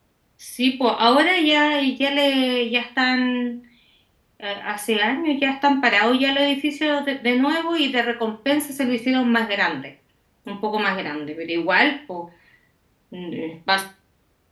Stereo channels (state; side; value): identical; both; correlation 1.00